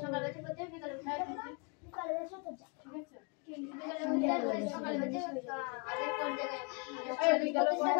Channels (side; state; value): right; quieter; 33.3 dB